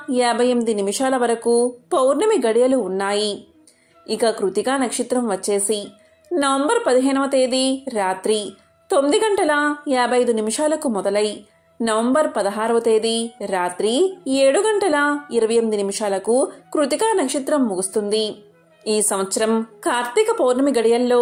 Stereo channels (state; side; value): identical; both; correlation 1.00